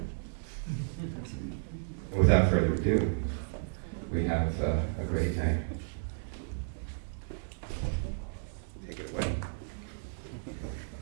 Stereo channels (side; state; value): left; silent; digital silence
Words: And without further ado, we have a great night. Take it away.